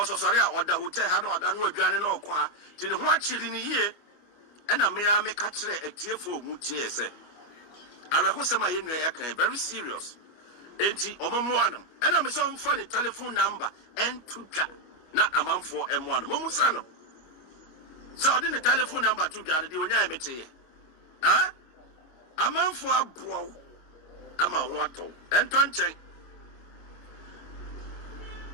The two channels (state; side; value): late; right; 25 ms